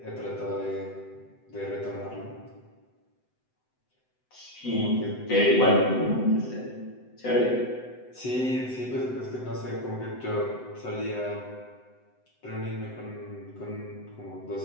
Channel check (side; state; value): right; late; 7.9 ms